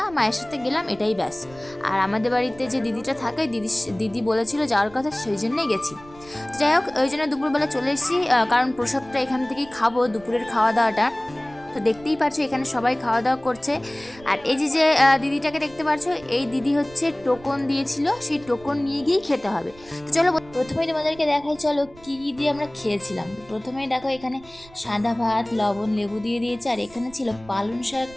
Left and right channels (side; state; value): right; noise; rumble, 22 dB below the sound